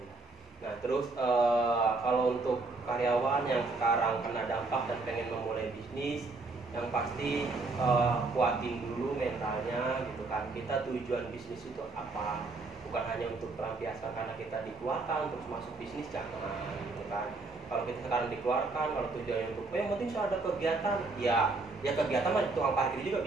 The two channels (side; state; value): left; quieter; 3.5 dB